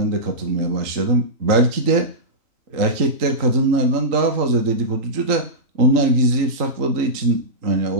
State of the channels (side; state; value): left; late; 3.8 ms